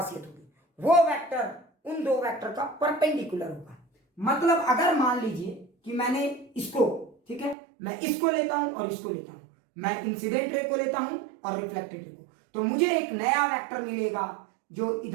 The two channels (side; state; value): left; drops out; at 7.6 s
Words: होगी, वो वेक्टर उन दो वेक्टर का परपेंडिकुलर होगा। मतलब अगर मान लीजिए कि मैंने इसको, ठीक है, मैं इसको लेता हूं और इसको लेता हूं, मैं इंसिडेंट रे को लेता हूं और रिफ्लेक्टेड रे को, तो मुझे एक नया वेक्टर मिलेगा जो